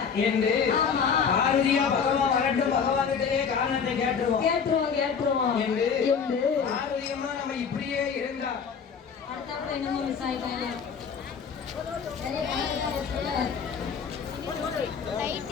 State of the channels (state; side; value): quieter; right; 6.5 dB